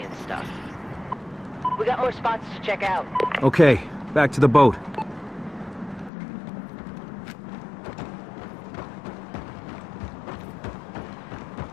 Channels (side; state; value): right; drops out; at 6.1 s